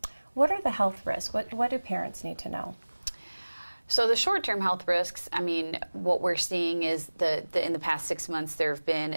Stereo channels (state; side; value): inverted; both; correlation -1.00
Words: What are the health risks? What do parents need to know? So the short-term health risks, I mean, what we're seeing is in the past 6 months, there have been